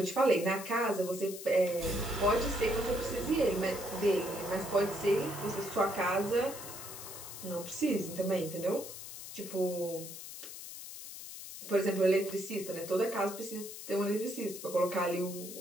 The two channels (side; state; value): left; noise; hiss, 11 dB below the sound